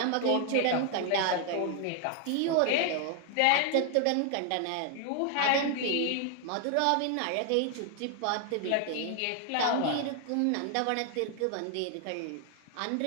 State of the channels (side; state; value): both; different; correlation 0.00